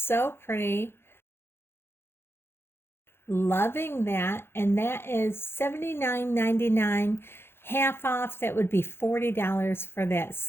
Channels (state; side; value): late; right; 0.11 ms